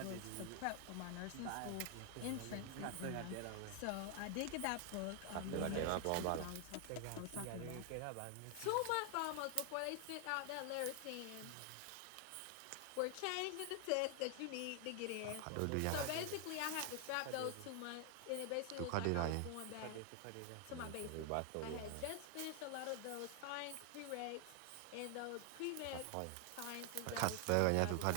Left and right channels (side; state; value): both; different; correlation 0.00